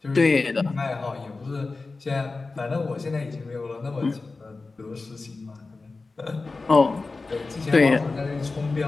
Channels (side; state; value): right; quieter; 3.7 dB